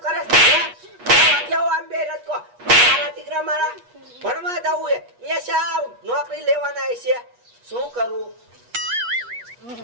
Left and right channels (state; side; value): late; left; 8.3 ms